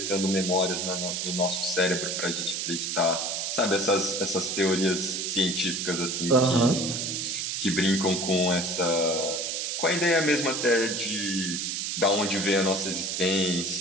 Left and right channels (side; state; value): right; noise; hiss, 2 dB below the sound